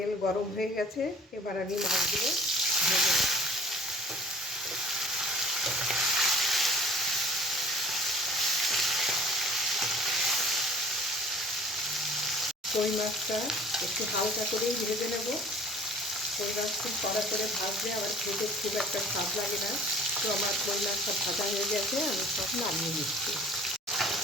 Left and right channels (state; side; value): normal; both; correlation 0.49